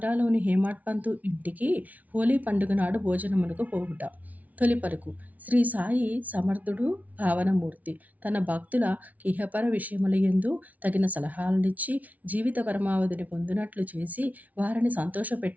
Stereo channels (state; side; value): late; left; 0.072 ms